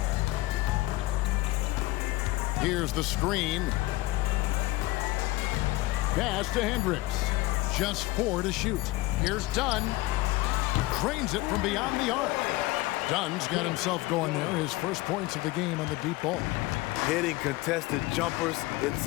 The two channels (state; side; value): quieter; right; 19.3 dB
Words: Here's the screen. Pass to Hendricks. Just 4 to shoot. Here's Dunn. Cranes it from beyond the arc. Dunn's got himself going there. His first points of the game on the deep ball. Hitting contested jumpers, it's